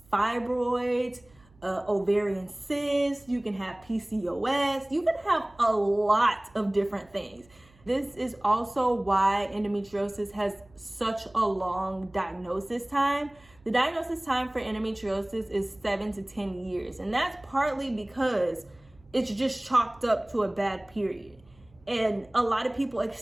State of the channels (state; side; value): noise; right; hum, 29 dB below the sound